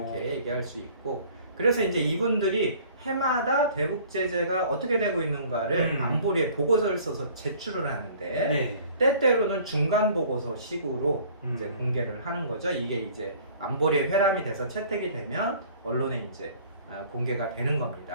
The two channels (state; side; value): inverted; both; correlation -0.51